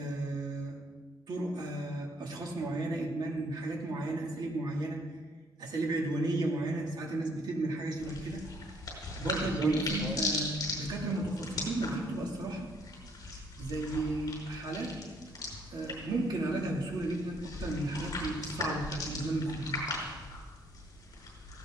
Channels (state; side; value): normal; both; correlation 0.65